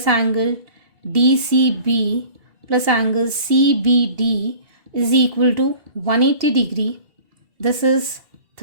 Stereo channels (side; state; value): left; late; 2.8 ms